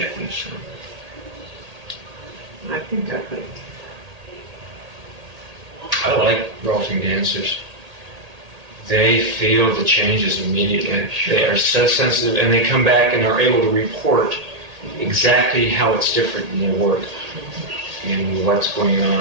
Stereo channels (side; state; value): left; late; 1.8 ms